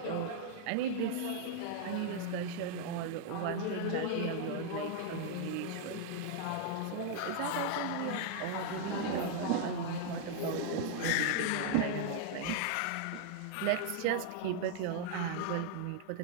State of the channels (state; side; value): different; both; correlation -0.01